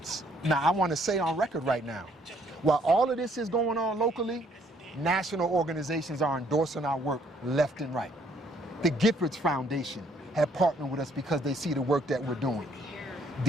Now, I want to say on record right now, while all of this is going on locally, national organizations are endorsing our work left and right. The Giffords Foundation have partnered with us because they see the work that we're doing.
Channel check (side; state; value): both; normal; correlation 0.65